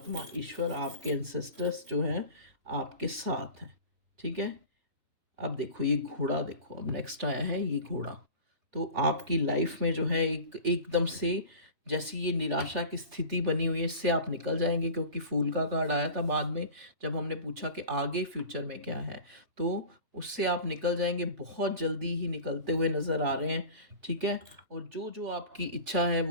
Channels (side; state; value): left; late; 3.4 ms